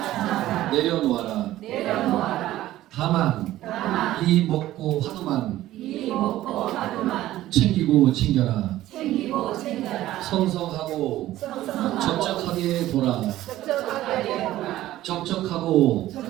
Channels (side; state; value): left; quieter; 14.8 dB